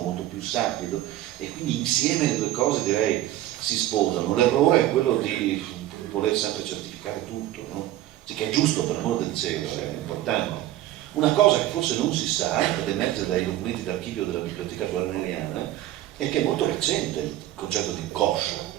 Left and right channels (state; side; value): quieter; left; 14.1 dB